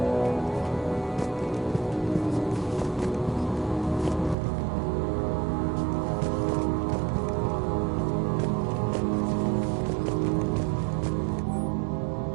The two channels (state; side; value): drops out; left; at 4.4 s